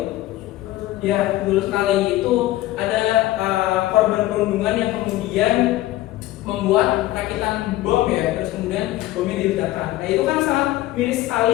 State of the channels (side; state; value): right; quieter; 16.0 dB